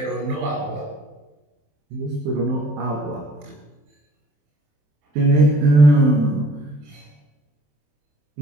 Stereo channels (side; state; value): left; late; 27 ms